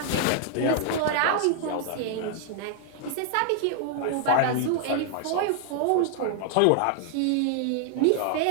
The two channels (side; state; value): both; different; correlation 0.00